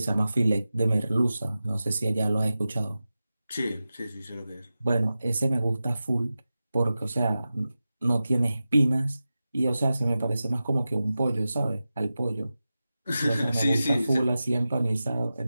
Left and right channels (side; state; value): both; inverted; correlation -0.94